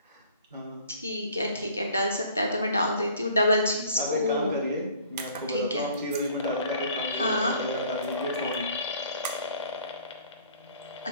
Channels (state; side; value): inverted; both; correlation -0.54